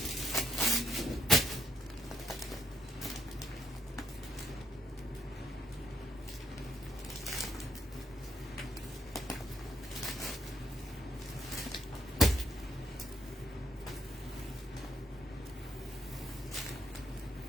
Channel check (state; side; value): normal; both; correlation 0.75